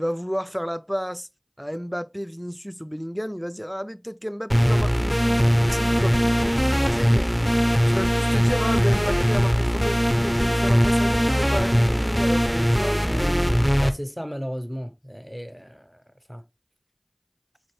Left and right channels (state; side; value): identical; both; correlation 1.00